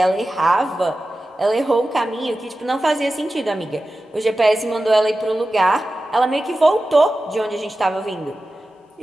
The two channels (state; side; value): normal; both; correlation 0.94